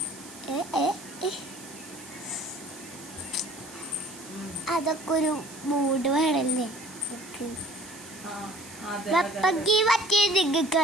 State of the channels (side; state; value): right; noise; hiss, 17 dB below the sound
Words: അതൊക്കെ ഒരു മൂഡ് വേണല്ലേ. വെപ്പങ്കി മറ്റേ നിങ്ങൾക്ക്